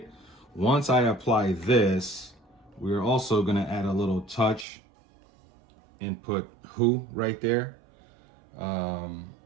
Once I apply this, we're also going to add a little touch and put Who right there. And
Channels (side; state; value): left; drops out; at 4.7 s